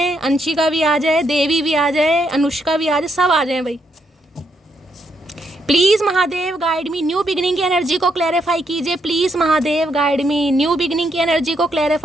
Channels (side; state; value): both; normal; correlation 0.77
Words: अंशिका भी आ जाए, देवी भी आ जाए, अनुष्का भी आ जाए, सब आ जाए भाई। Please Mahadev guide me. New beginning की एनर्जी को क्लैरिफाई कीजिए, please Mahadev guide me. New beginning की एनर्जी को